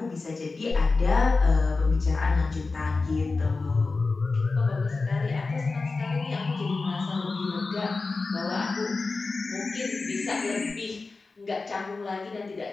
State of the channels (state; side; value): quieter; right; 3.9 dB